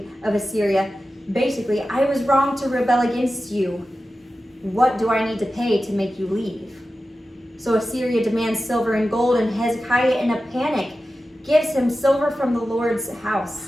of Assyria, basically, I was wrong to rebel against you. What do I need to pay to make you leave? So Assyria demands silver and gold, and Hezekiah, in a panic, gives him silver from the Lord's house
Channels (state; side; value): normal; both; correlation 0.93